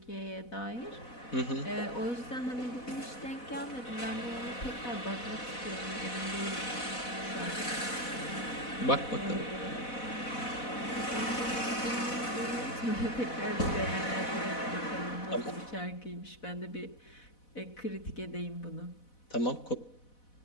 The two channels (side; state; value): right; late; 4.1 ms